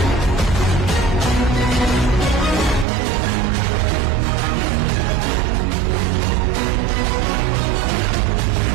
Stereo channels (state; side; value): drops out; left; at 2.9 s